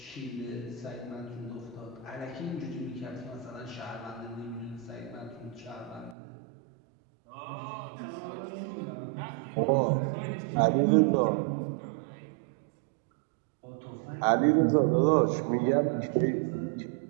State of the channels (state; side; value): drops out; left; at 6.2 s